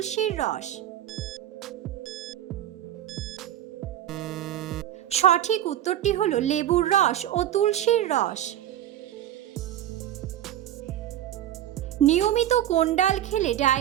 রস? সঠিক উত্তরটি হলো লেবুর রস ও তুলসীর রস। নিয়মিত কোন ডাল খেলে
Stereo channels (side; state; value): left; quieter; 12.0 dB